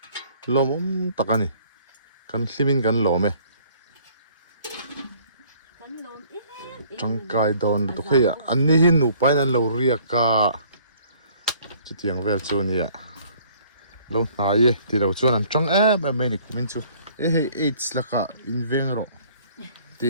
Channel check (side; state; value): both; inverted; correlation -0.58